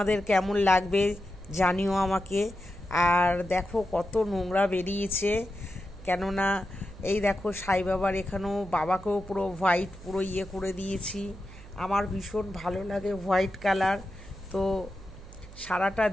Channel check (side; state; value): right; noise; hum, 17 dB below the sound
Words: কেমন লাগবে জানিও আমাকে। আর দেখো কত নোংরা বেরিয়েছে, কেননা এই দেখো সাই বাবার এখানেও বাবাকেও পুরো হোয়াইট পুরো ইয়ে করে দিয়েছি। আমার ভীষণ ভালো লাগে হোয়াইট কালার। তো সারাটা